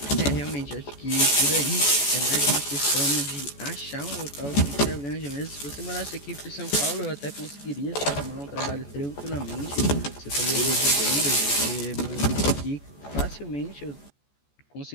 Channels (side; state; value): right; late; 14 ms